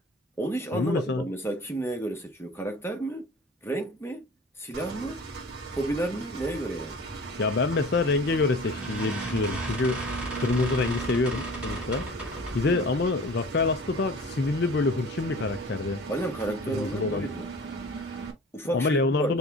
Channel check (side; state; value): both; normal; correlation 0.43